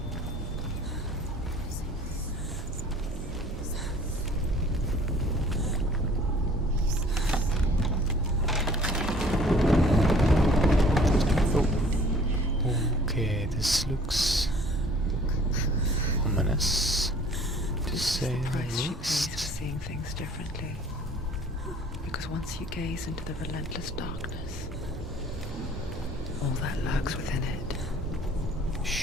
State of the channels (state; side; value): normal; both; correlation 0.53